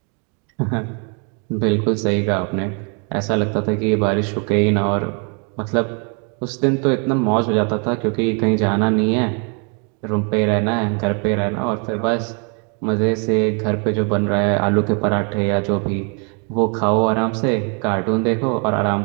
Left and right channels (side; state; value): left; quieter; 37.4 dB